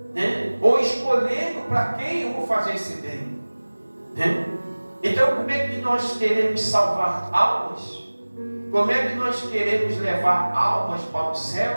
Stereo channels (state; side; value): inverted; both; correlation -1.00